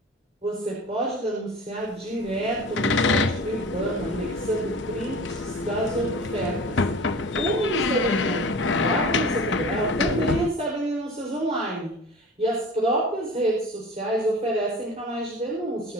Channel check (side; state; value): both; normal; correlation 0.38